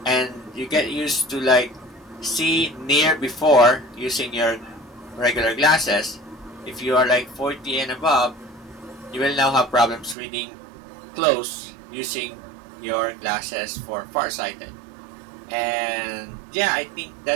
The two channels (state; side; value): drops out; left; at 10.2 s